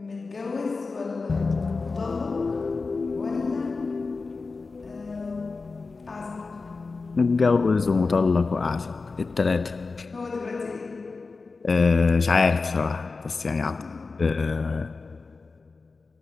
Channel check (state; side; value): quieter; right; 4.1 dB